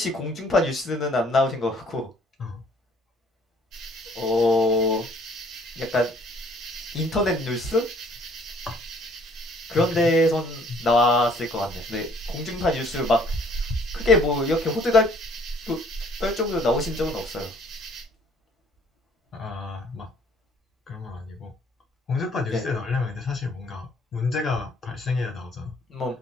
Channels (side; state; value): both; normal; correlation 0.60